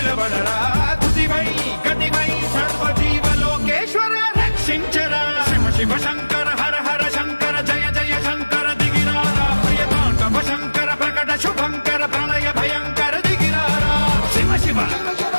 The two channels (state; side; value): inverted; both; correlation -1.00